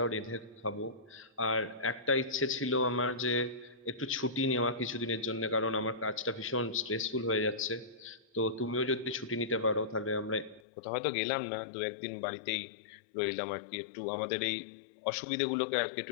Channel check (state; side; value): drops out; right; at 10.6 s